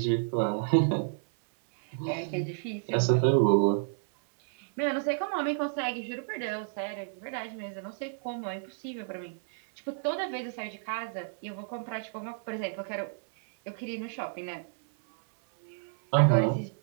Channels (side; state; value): left; silent; digital silence